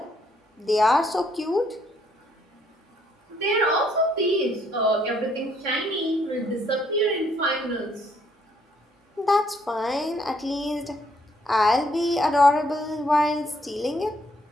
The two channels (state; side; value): normal; both; correlation 0.69